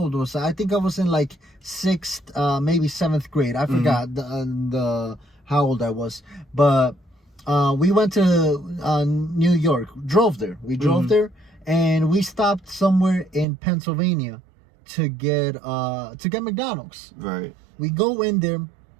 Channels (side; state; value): left; drops out; at 13.5 s